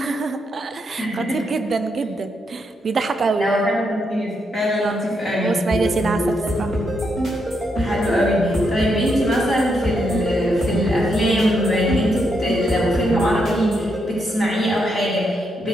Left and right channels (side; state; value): both; normal; correlation 0.80